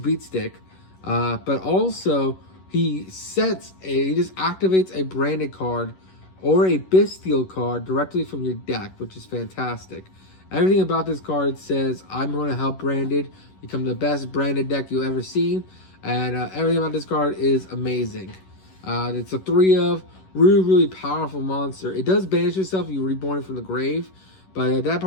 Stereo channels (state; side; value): late; right; 11 ms